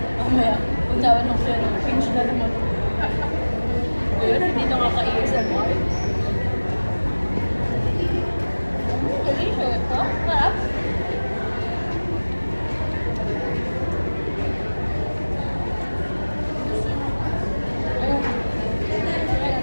mamaya, kung nawan ng siya, pinch na naman. Ayun, hindi nakaka-ASMR. Delicious, no? Sarap.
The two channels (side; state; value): both; inverted; correlation -1.00